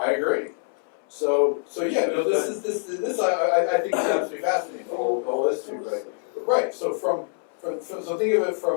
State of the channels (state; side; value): silent; right; 62 dB below the other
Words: agree. So yeah, this I think is absolutely fascinating. The whole history, right? Right. So so think of it